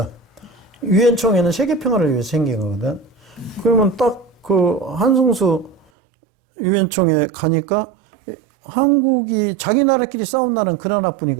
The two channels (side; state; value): left; drops out; at 5.8 s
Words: 유엔 총회는 세계 평화를 위해서 생긴 거거든. 그러면 딱 그 한승수 유엔 총회 가니까 한국이 자기 나라끼리 싸운 나라는 그